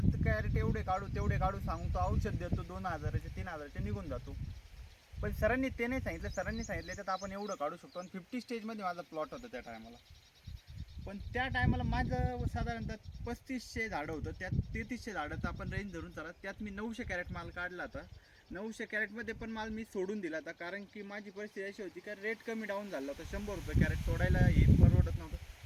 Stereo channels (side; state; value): both; identical; correlation 1.00